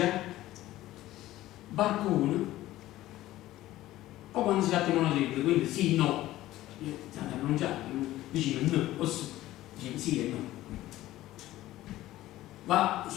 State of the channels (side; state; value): right; quieter; 15.5 dB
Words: barcone, o quando si tratta di monosilabbi, quindi sì, no, state a pronunciare, vicino no, o sì, dice sì e no.